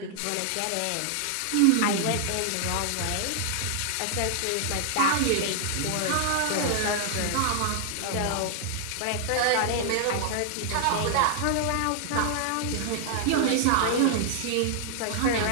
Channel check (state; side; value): different; both; correlation 0.00